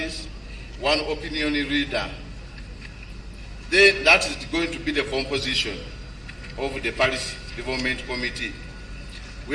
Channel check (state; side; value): identical; both; correlation 1.00